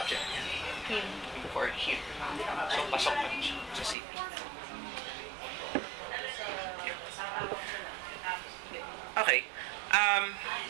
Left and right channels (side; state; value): left; drops out; at 4.0 s